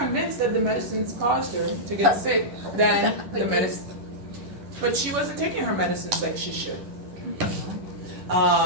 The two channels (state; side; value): late; left; 11 ms